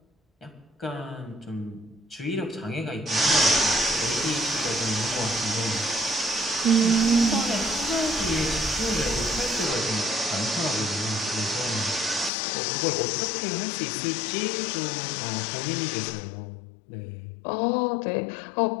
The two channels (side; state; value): right; drops out; at 12.3 s